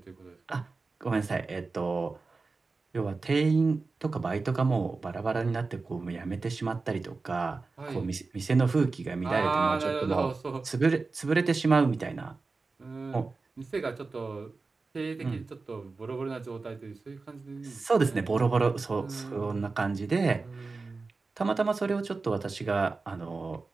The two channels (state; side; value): quieter; left; 4.0 dB